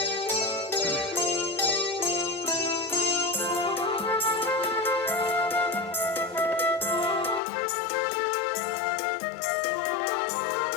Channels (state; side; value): drops out; right; at 7.4 s